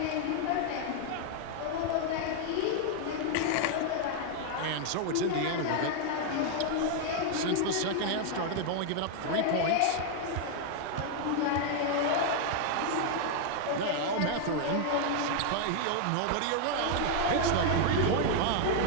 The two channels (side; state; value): both; different; correlation 0.00